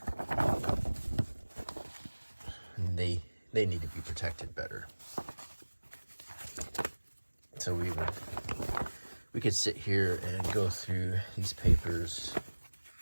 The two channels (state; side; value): inverted; both; correlation -1.00